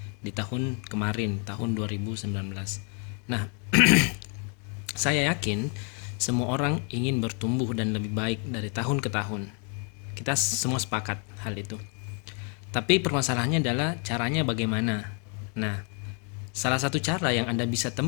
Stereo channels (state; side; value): quieter; right; 39.2 dB